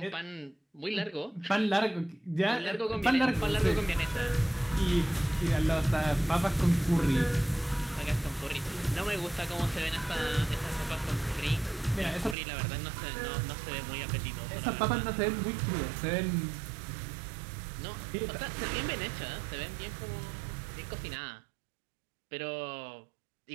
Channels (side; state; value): left; drops out; at 12.4 s